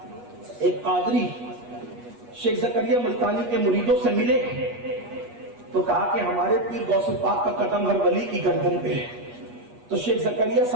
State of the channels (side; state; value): left; late; 8.3 ms